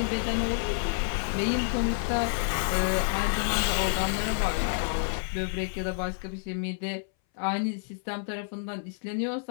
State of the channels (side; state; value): right; silent; 59 dB below the other